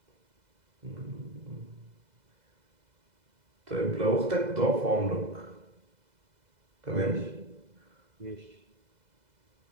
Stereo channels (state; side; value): late; left; 2.0 ms